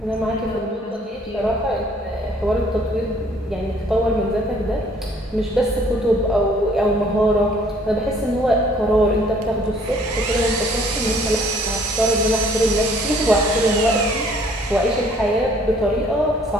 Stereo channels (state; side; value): normal; both; correlation 0.59